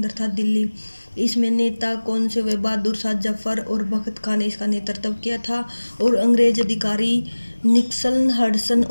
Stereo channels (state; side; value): inverted; both; correlation -1.00